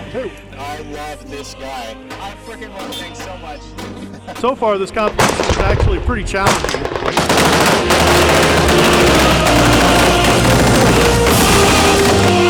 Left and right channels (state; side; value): identical; both; correlation 1.00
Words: I love this guy. I freaking love things so much. So far, this competition is actually pretty challenging.